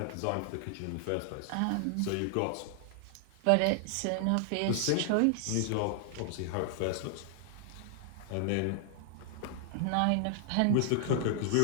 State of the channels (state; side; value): different; both; correlation 0.00